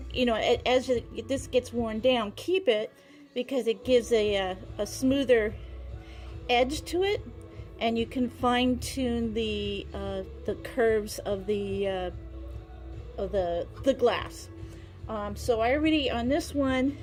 as this gets worn down, keep it, because it gives a smoother edge to it, and you can fine tune the curves of the glass. So I already on this one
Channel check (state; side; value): identical; both; correlation 1.00